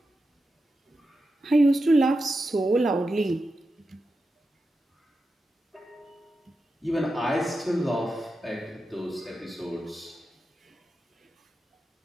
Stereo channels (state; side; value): normal; both; correlation 0.90